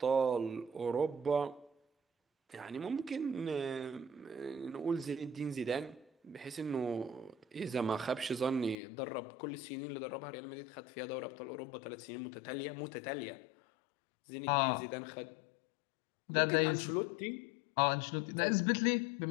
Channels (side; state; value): right; drops out; at 8.8 s